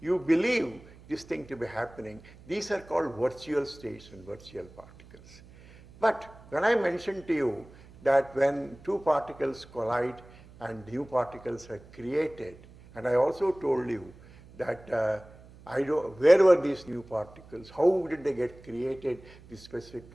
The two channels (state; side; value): noise; right; hum, 22 dB below the sound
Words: You believe this thing to be happening. These are called virtual states and virtual particles. But when I mentioned to you that when two particles collide and new particles are created, and I also told you that where were these new particles, how did they get created, the specific